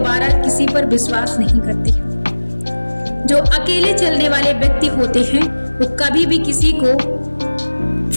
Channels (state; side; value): inverted; both; correlation -1.00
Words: किसी पर विश्वास नहीं करते। जो अकेले चलने वाले व्यक्ति होते हैं वो कभी भी किसी को